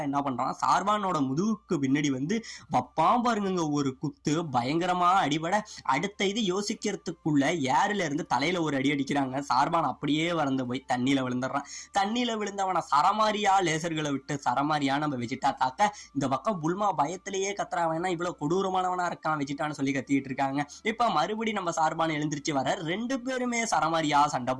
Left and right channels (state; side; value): identical; both; correlation 1.00